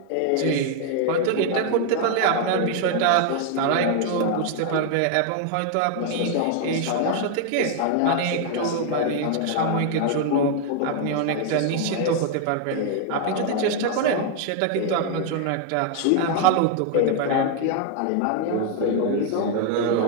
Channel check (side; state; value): both; different; correlation 0.00